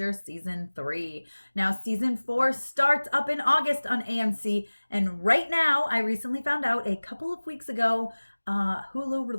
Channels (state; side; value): inverted; both; correlation -1.00